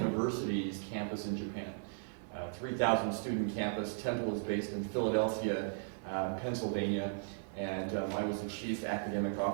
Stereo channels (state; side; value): silent; left; digital silence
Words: campus in Japan. 3,000 student campus. Temple is based in Philadelphia, Pennsylvania, and I was the chief academic